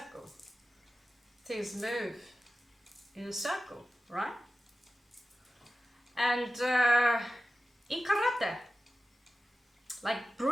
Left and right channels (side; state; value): both; normal; correlation 0.94